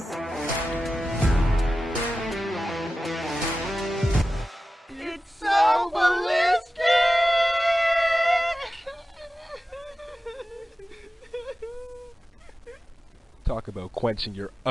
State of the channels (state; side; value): normal; both; correlation 0.94